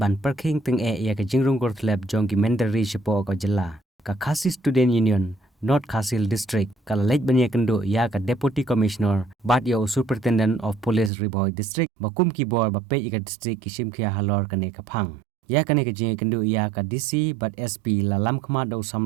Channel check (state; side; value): drops out; left; at 11.1 s